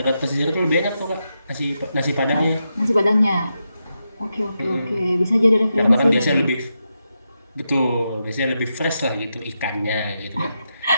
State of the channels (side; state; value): both; inverted; correlation -0.86